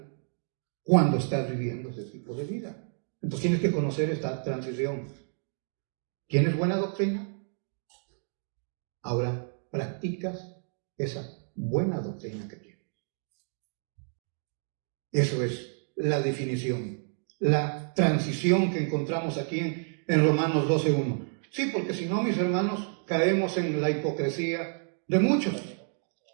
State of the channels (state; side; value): silent; left; 57 dB below the other